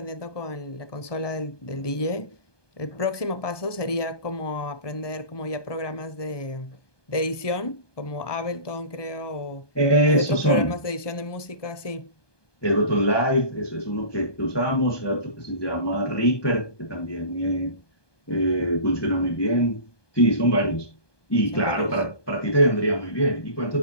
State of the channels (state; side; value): late; right; 1.2 ms